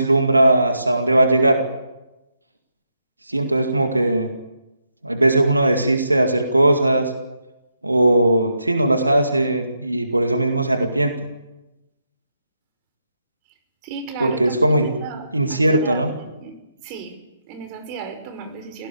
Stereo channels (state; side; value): inverted; both; correlation -0.82